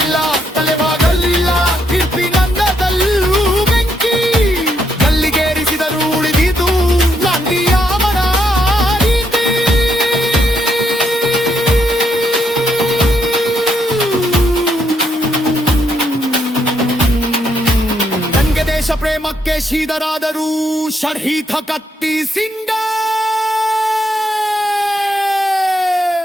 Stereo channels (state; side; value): normal; both; correlation 0.76